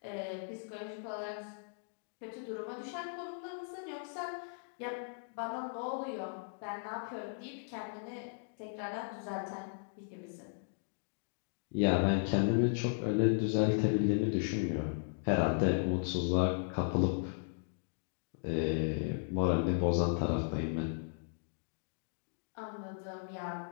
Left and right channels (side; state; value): right; silent; digital silence